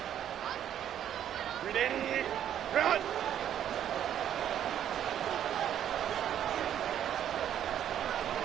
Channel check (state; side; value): quieter; left; 10.2 dB